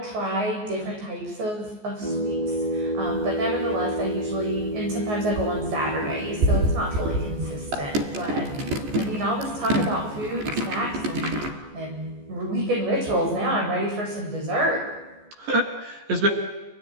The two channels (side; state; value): left; late; 14 ms